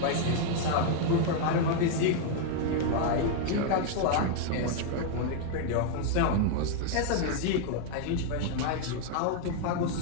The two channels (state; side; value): different; both; correlation 0.00